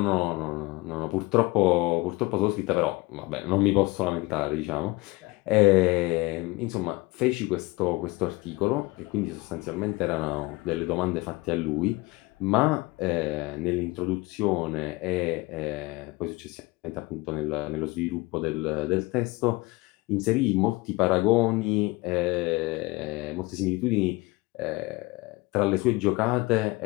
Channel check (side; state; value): right; quieter; 23.0 dB